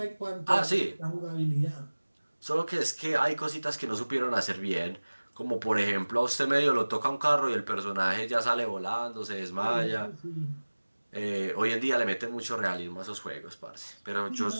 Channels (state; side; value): inverted; both; correlation -1.00